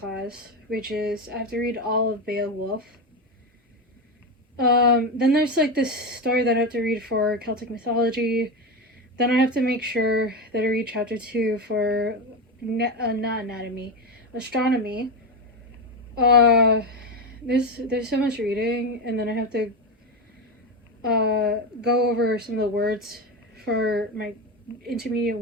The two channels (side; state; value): both; normal; correlation 0.14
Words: which is I have to read all of Beowulf. Then there's like this story that I have to read for Celtic mythology. Then I have to make sure that I read chapter 2 for astronomy. There's so much reading, and then I have to go over some of the words for my